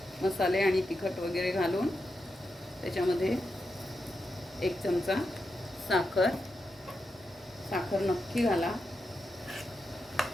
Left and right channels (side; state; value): both; normal; correlation 0.87